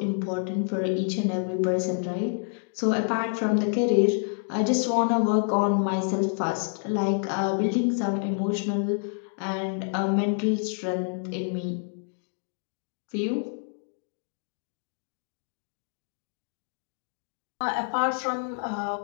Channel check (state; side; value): silent; right; 59 dB below the other